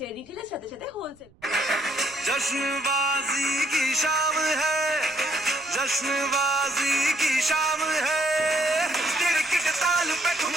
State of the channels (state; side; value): noise; right; rumble, 29 dB below the sound